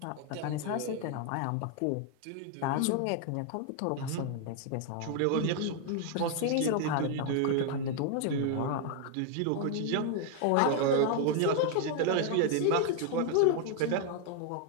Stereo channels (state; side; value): different; both; correlation 0.00